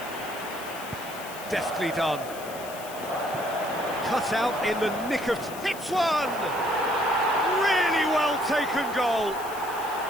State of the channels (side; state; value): left; noise; hiss, 15 dB below the sound